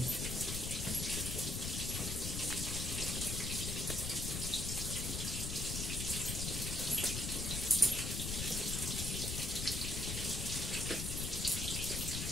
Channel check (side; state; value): left; noise; rumble, 2 dB below the sound